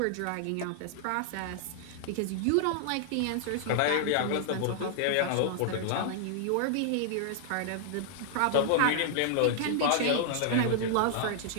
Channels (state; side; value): different; both; correlation -0.01